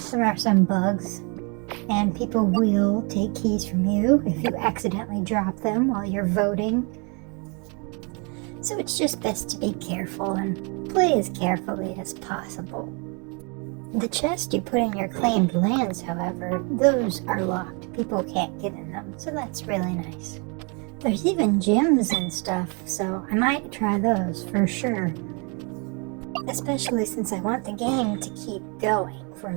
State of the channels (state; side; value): quieter; left; 33.7 dB